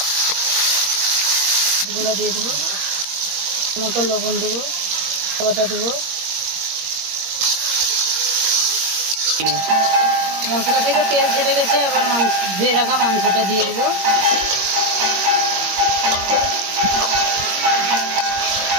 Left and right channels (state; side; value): late; left; 21 ms